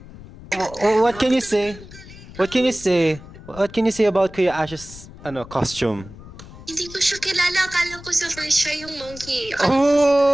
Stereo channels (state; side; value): noise; left; rumble, 17 dB below the sound